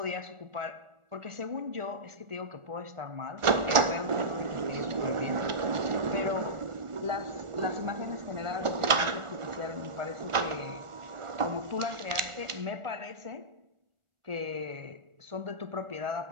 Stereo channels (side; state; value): left; late; 1.4 ms